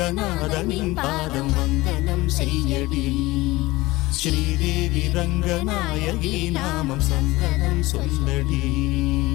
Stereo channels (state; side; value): quieter; right; 20.1 dB